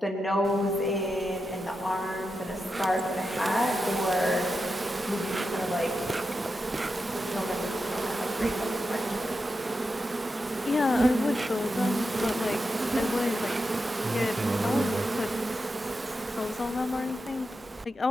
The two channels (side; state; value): both; normal; correlation 0.88